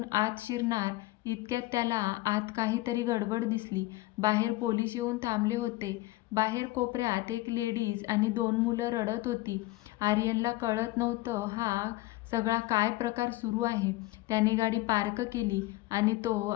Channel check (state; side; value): quieter; right; 19.0 dB